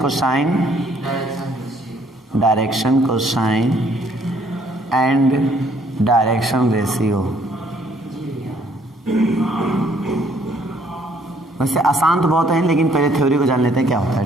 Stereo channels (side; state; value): both; normal; correlation 0.64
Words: and direction ratio. वैसे आसान तो बहुत है, लेकिन पहले थ्योरी को जान लेते हैं क्या होता है।